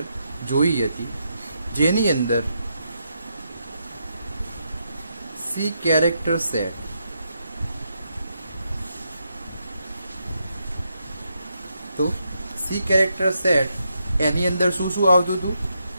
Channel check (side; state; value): both; inverted; correlation -0.81